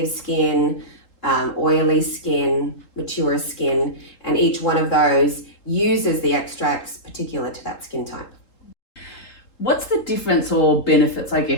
skin, oily skin, mature skin, and each one of those uses the extracts particular to that skin type. What's the difference or benefits, I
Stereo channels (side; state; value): right; late; 3.7 ms